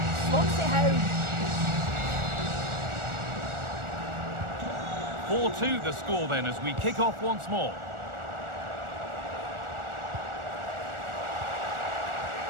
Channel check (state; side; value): late; left; 1.4 ms